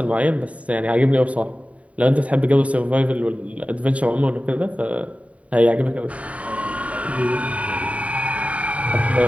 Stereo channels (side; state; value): left; late; 0.066 ms